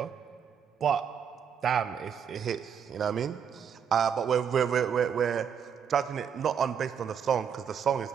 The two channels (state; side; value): quieter; left; 7.6 dB